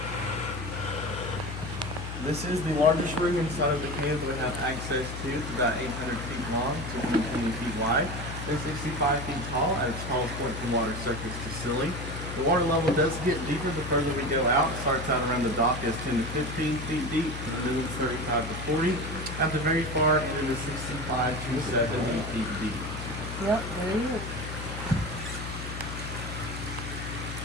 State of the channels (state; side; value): noise; left; hum, 7 dB below the sound